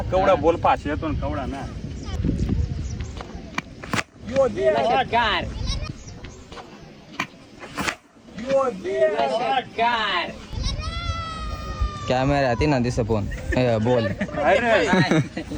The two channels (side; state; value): both; identical; correlation 1.00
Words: केवढा बोल फाशी येतो केवढा ना. कॅमेरा ती ना दिस फोन बोल.